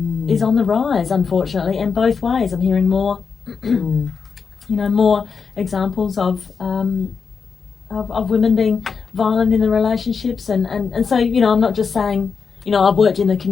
is on the rise, unfortunately, and both ways. I'm hearing more you know, more examples of women being violent in the relationships, and so, you know, I'm not just saying, you know, I've worked in the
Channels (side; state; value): right; quieter; 5.7 dB